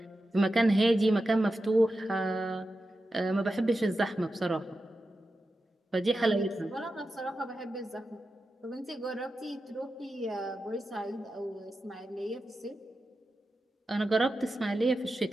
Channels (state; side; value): normal; both; correlation 0.91